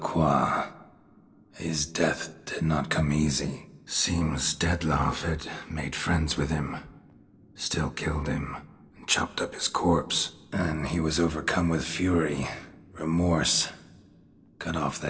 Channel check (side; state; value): both; identical; correlation 1.00